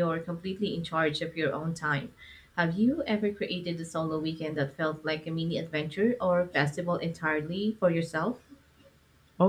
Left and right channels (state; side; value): identical; both; correlation 1.00